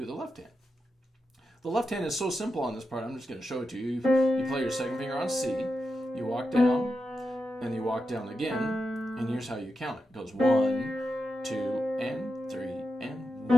the left hand. The left hand is so simple on this part, I'm just going to show it to you. You play your 2nd finger on C, you walk down, and you walk down again, and here's how you count it. It goes 1, 2, and 3, and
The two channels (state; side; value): normal; both; correlation 0.88